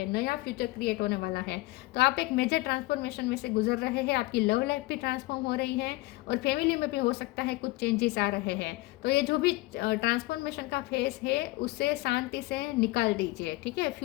नया फ्यूचर क्रिएट होने वाला है। तो आप एक मेजर ट्रांसफॉर्मेशन में से गुजर रहे हैं, आपकी लव लाइफ भी ट्रांसफॉर्म हो रही है और फैमिली में भी हो सकता है कुछ चेंजेस आ रहे हैं। तो ये जो भी ट्रांसफॉर्मेशन का फेस है उसे शांति से निकाल दीजिए, ठीक है।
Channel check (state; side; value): quieter; right; 20.6 dB